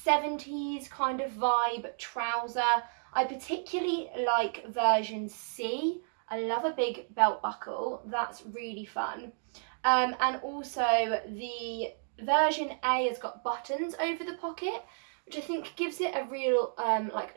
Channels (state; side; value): silent; left; digital silence